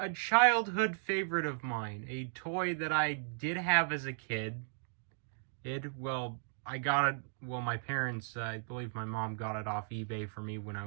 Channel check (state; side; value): silent; left; digital silence